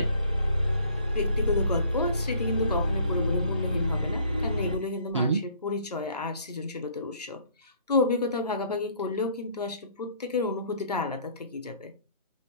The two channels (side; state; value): both; inverted; correlation -0.58